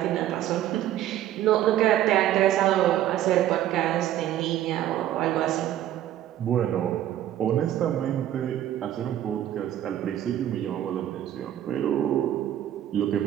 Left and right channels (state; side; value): quieter; left; 12.2 dB